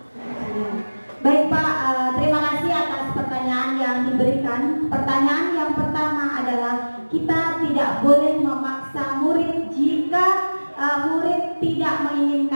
Baik Pak, terima kasih atas pertanyaan yang diberikan. Pertanyaan yang pertama adalah kita tidak boleh memaksa murid jika murid tidak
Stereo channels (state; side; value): inverted; both; correlation -1.00